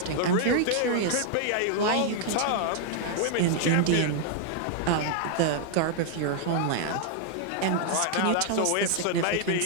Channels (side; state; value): both; different; correlation 0.00